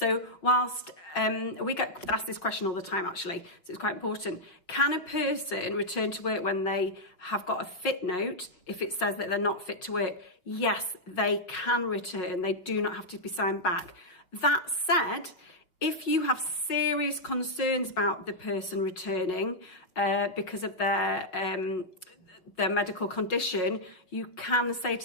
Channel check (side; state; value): right; late; 5.4 ms